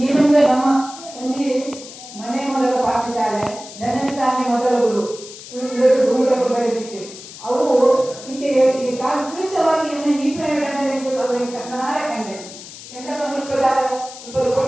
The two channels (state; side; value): noise; left; hiss, 15 dB below the sound